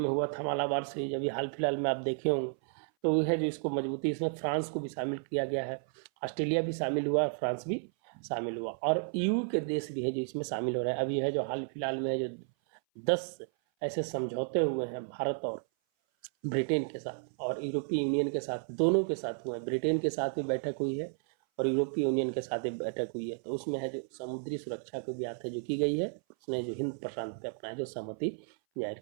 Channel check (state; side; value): silent; left; 56 dB below the other